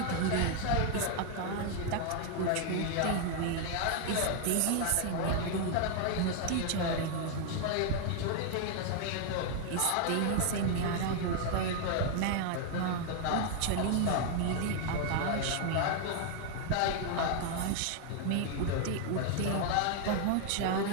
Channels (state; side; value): different; both; correlation 0.00